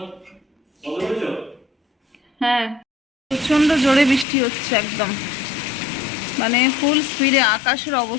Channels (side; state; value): right; drops out; at 4.2 s